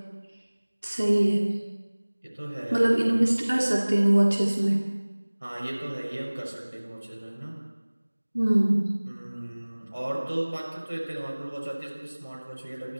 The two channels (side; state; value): both; inverted; correlation -1.00